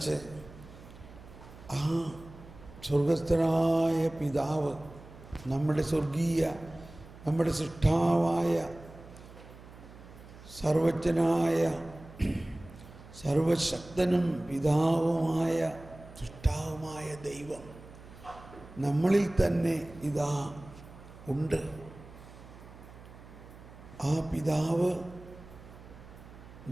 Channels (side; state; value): right; noise; hum, 18 dB below the sound